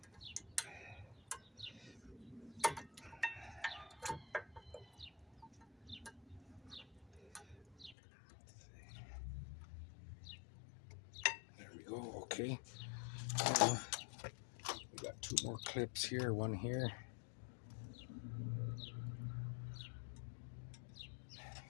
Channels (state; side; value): drops out; right; at 8.0 s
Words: There we go. Okay. We got two more clips here. One here.